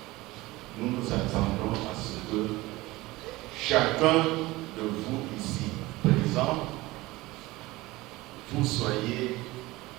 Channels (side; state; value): left; quieter; 19.9 dB